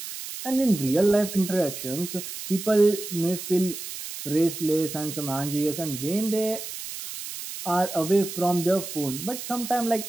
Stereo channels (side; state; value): right; noise; hiss, 9 dB below the sound